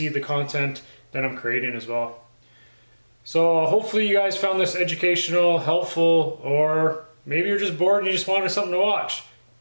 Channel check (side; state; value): both; inverted; correlation -1.00